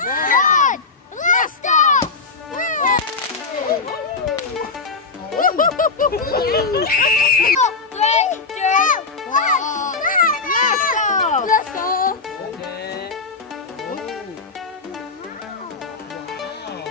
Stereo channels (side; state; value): right; quieter; 4.2 dB